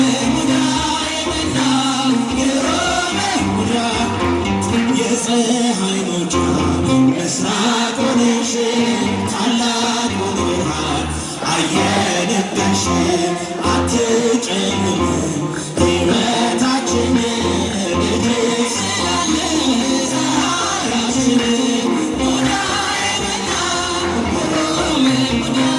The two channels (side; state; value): both; identical; correlation 1.00